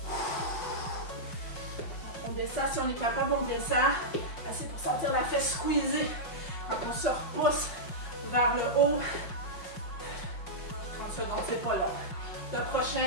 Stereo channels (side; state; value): right; late; 5.6 ms